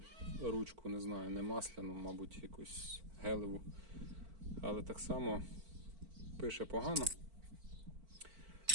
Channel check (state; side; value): late; left; 4.5 ms